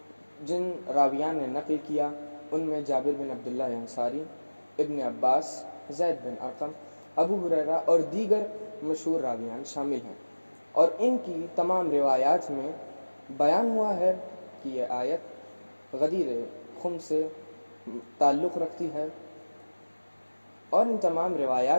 جن راویان نے نقل کیا ان میں جابر بن عبداللہ انصاری، ابن عباس، زید بن ارقم، ابو ہریرہ اور دیگر مشہور راویان شامل ہیں، اور ان کی تمام روایات میں بیان ہوا ہے کہ یہ آیت غدیر خم سے تعلق رکھتی ہے، اور ان تمام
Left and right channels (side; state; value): both; inverted; correlation -1.00